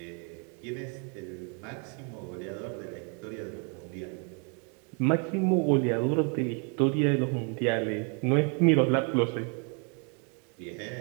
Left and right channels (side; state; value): left; quieter; 37.7 dB